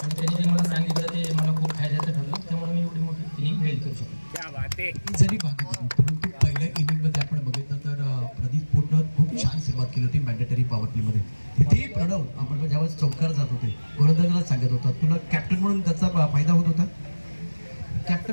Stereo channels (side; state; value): both; inverted; correlation -1.00